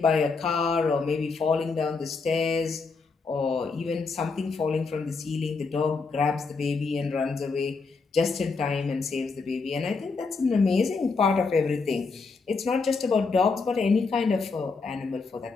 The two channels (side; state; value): right; quieter; 4.4 dB